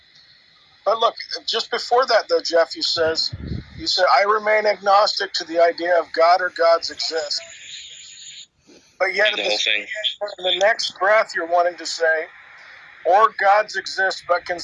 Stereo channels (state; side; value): identical; both; correlation 1.00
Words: But look, just before that, though, Jeff, you said, I remain agnostic to the idea of God or gods exist. But yet, in the next breath, you're wanting to say, or gods exist, but